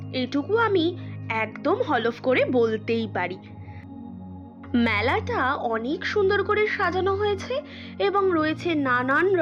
এইটুকু আমি একদম হলফ করে বলতেই পারি। মেলাটা অনেক সুন্দর করে সাজানো হয়েছে এবং রয়েছে নানান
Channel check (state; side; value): identical; both; correlation 1.00